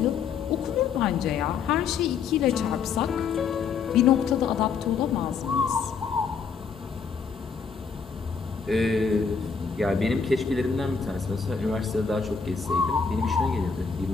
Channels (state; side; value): quieter; right; 5.8 dB